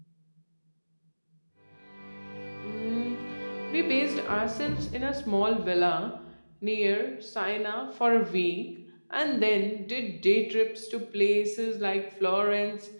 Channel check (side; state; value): both; inverted; correlation -1.00